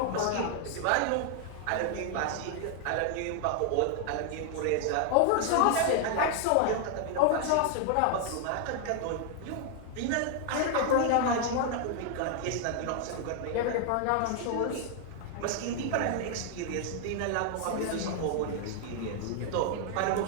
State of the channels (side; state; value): both; different; correlation 0.00